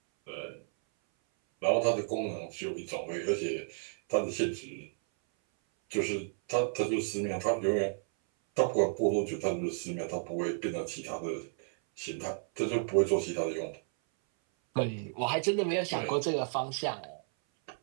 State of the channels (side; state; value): left; silent; 56 dB below the other